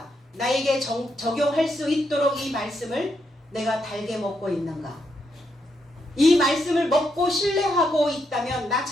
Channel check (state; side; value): normal; both; correlation 0.80